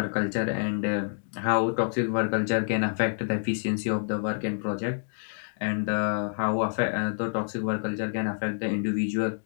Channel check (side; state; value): right; silent; digital silence